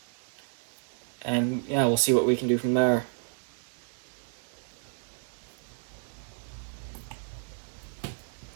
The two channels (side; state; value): left; silent; 57 dB below the other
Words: and yeah, we'll see what we can do from there.